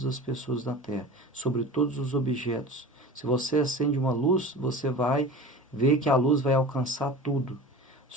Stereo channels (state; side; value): normal; both; correlation 0.36